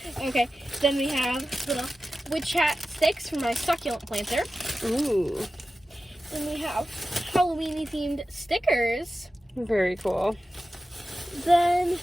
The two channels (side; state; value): both; normal; correlation 0.94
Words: Okay, then we have little witch hat sticks from my succulent planter. Ooh, Then we have Halloween themed stickers. very cool. Then